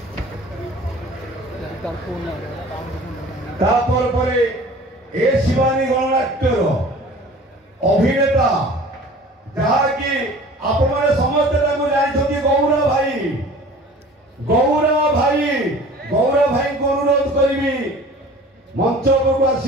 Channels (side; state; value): both; normal; correlation 0.45